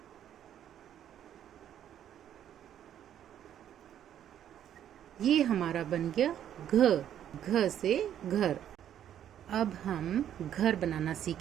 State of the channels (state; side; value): quieter; left; 10.4 dB